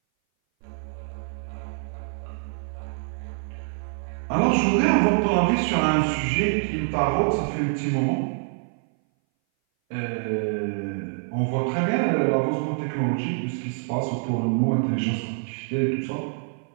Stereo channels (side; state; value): left; silent; 58 dB below the other